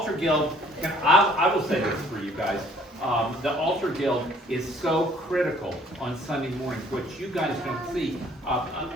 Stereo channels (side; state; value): both; normal; correlation 0.59